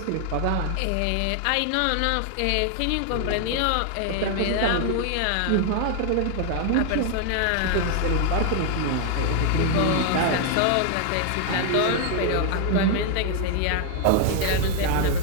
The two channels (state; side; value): different; both; correlation 0.00